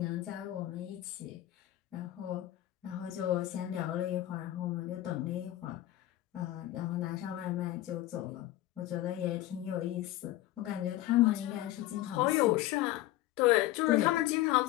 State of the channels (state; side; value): quieter; right; 15.1 dB